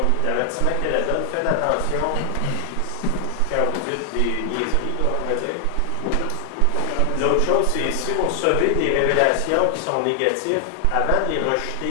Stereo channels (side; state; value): both; different; correlation 0.00